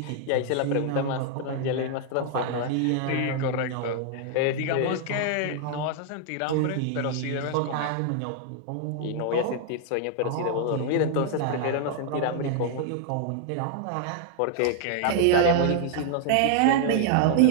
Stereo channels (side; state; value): both; different; correlation 0.00